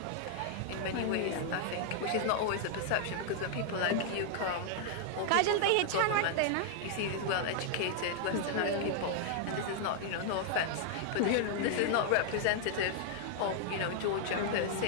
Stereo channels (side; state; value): both; different; correlation 0.00